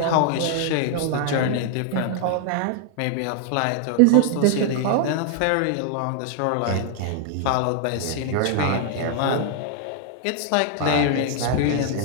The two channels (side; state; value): both; different; correlation 0.00